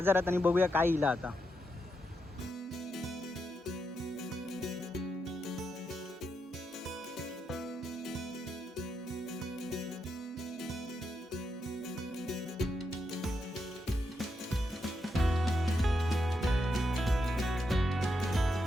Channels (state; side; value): normal; both; correlation 0.83